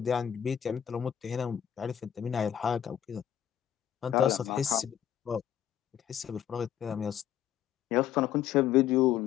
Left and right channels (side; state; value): right; quieter; 10.0 dB